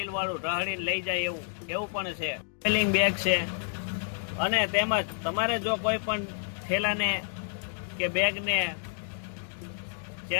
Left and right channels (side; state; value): right; silent; digital silence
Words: ઢહળીને લઈ જાય એવું પણ છે. ટ્રાવેલિંગ બેગ છે. અને તેમજ તમારે જો કોઈ પણ ઠેલાને કે બેગને